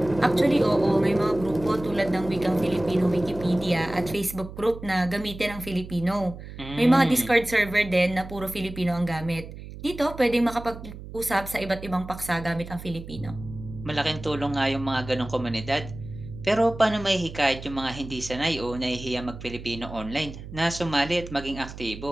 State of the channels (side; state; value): right; noise; hum, 13 dB below the sound